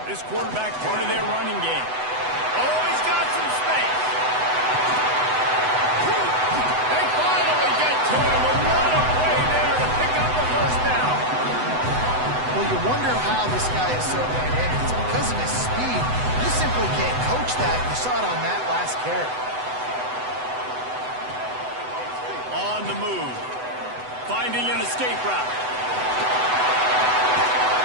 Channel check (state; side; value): late; left; 8.0 ms